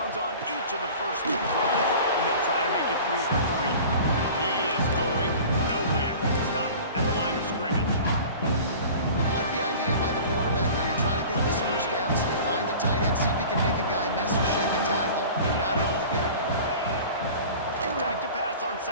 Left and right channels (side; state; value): both; inverted; correlation -0.41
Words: on each of the first 2 drives, and they'll try to make it 3 for 3. He is going nowhere. Stop at the line of scrimmage. I like the idea by the quarterback there. You're trying to get this first down, so you find the tight end, see if he can make a guy